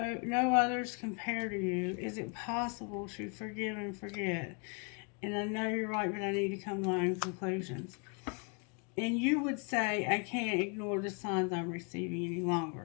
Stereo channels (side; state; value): right; quieter; 35.3 dB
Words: others compare to you. Is it possible to forgive and forget? And I know you're right, but I need to come to my own conclusions. And you would say, I can't ignore the signs I'm receiving any